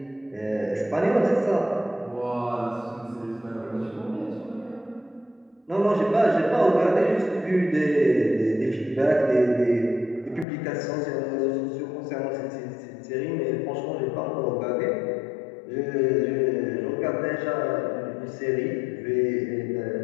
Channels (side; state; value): right; drops out; at 10.5 s